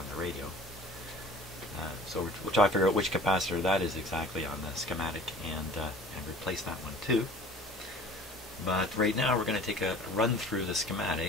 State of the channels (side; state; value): both; normal; correlation 0.46